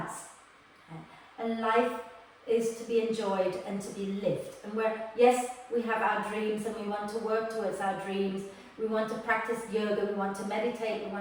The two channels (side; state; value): both; identical; correlation 1.00